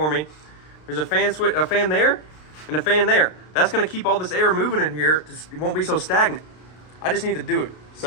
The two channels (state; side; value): late; right; 33 ms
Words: me. There's a fan there, and a fan there. That's going to keep all this air moving in here. It won't be so stagnant. I just need to do it.